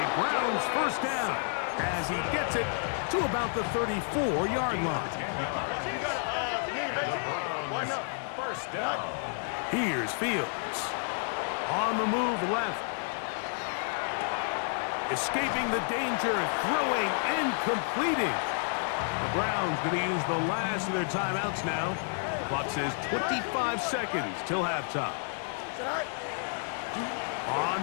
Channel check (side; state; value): right; silent; 57 dB below the other